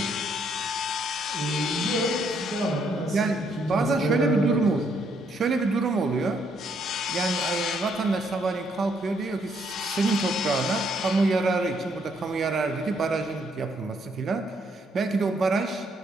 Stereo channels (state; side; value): normal; both; correlation 0.71